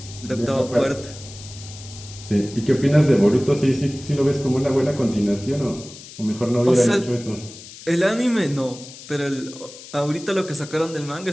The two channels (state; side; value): noise; left; hiss, 16 dB below the sound